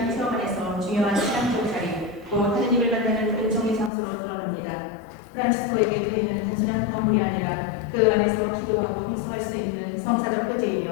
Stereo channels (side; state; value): right; drops out; at 3.9 s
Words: 체험 안에서 중요한 신앙적 자리, 곧 하느님을 만나는 은총의 장소로 드러납니다. 프란치스코에게 교회는 단순한 건물이 아니라 그 안에서 기도하고 활성할 수 있는 성사적